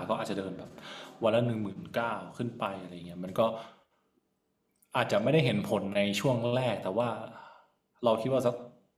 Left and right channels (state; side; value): identical; both; correlation 1.00